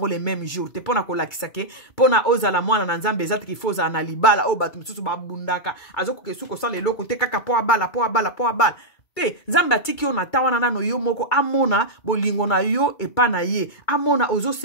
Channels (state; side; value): late; right; 2.2 ms